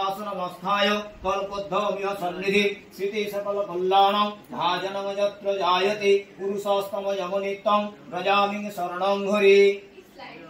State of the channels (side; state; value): both; identical; correlation 1.00